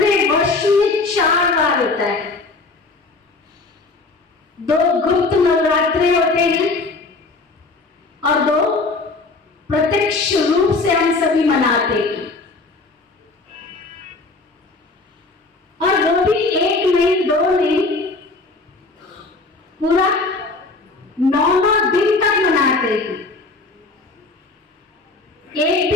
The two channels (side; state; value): right; quieter; 3.6 dB